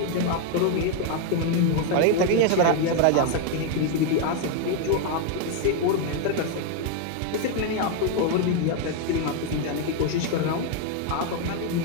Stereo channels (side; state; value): both; different; correlation 0.01